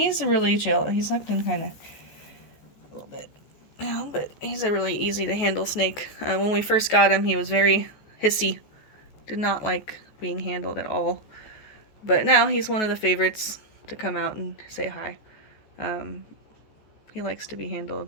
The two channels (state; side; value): late; right; 14 ms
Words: really chill. He's sucked in kind of a little bit now, but he's a really easy to handle snake. When we first got him, he was very hissy, did not like being handled at all. But now he's one of the favorites to come out and say hi. He likes to be handled.